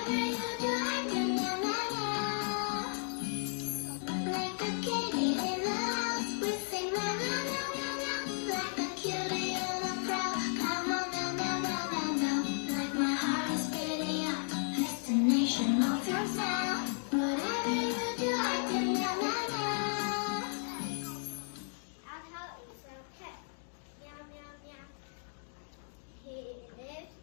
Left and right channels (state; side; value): silent; right; 55 dB below the other